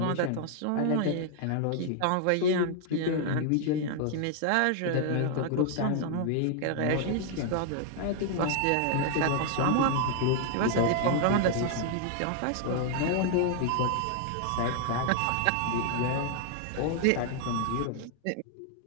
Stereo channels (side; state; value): both; different; correlation 0.00